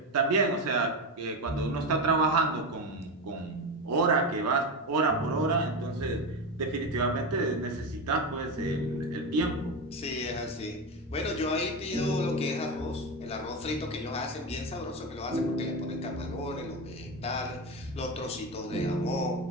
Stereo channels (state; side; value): normal; both; correlation 0.18